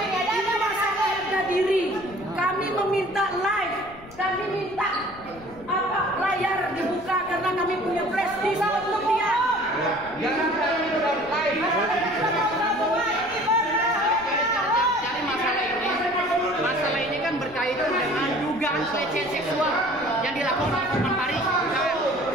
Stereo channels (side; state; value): left; noise; rumble, 21 dB below the sound